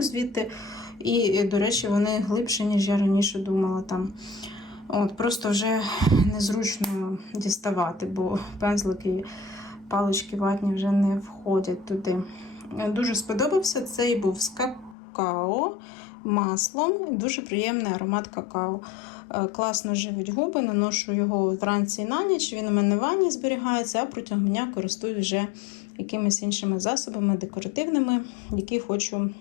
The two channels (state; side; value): drops out; right; at 15.0 s